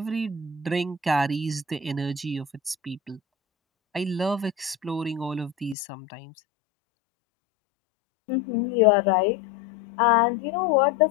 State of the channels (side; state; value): right; drops out; at 5.8 s